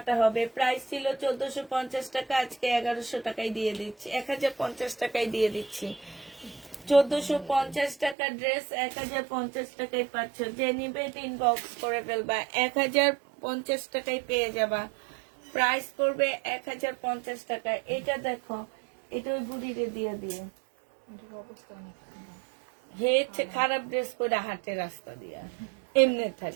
হবে। প্রাইস ছিল 1450 টাকা, আজকে 1100 টাকায় দিয়ে দিচ্ছি, 1050 টাকায় দিয়ে দিচ্ছি। 1450 টাকা ড্রেস 1050 টাকায় পাচ্ছ। যে নিবে ইনবক্স করে ফেলবা। 1050 টাকায় পেয়ে যাবা। প্রাইস পড়বে 1050 টাকা। এটা দেখো, এটা ওই বুড়িরে দিয়ে দিয়ে হেছে খারাপ ড্রেস পরে হাঁটে রাস্তা দিয়া, এমনি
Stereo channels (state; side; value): drops out; left; at 8.2 s